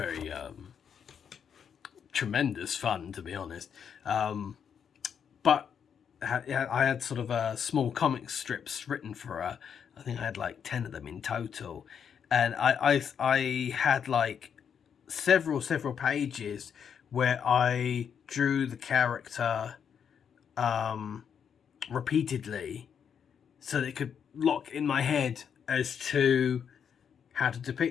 tremendous fun, to be honest. But I had sort of small comic strips written for her. I think I had like 10 of them in total, and I had like several pages where I drew the character repeatedly, so that it could lock in my head as to how to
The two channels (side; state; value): right; quieter; 7.6 dB